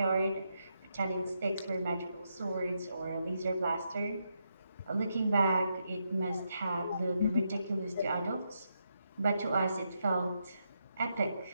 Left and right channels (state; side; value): inverted; both; correlation -0.81